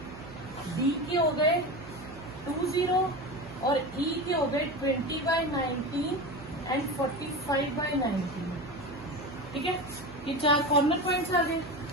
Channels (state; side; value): noise; right; hum, 17 dB below the sound